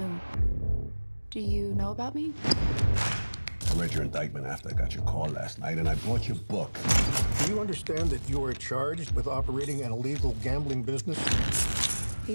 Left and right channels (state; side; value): inverted; both; correlation -1.00